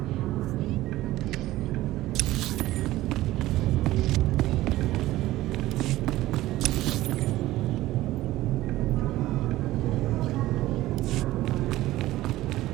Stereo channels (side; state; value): left; quieter; 16.3 dB